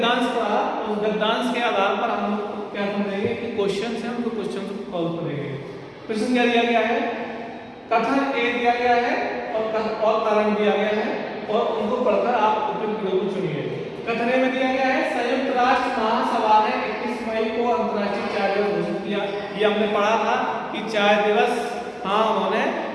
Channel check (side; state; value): both; identical; correlation 1.00